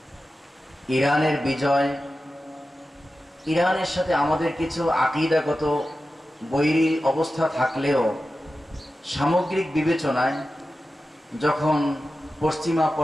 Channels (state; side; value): normal; both; correlation 0.93